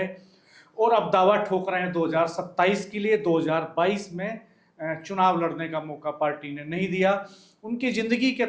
और अब दावा ठोक रहे हैं 2027 के लिए। 2022 में चुनाव लड़ने का मौका पार्टी ने नहीं दिया। उनकी ज़िंदगी के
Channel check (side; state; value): both; identical; correlation 1.00